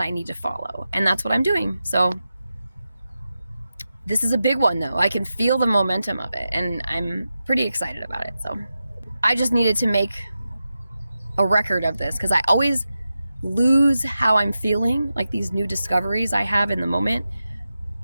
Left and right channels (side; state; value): both; inverted; correlation -0.91